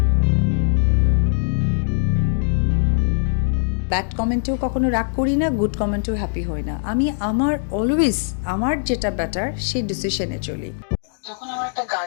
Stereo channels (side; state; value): right; silent; digital silence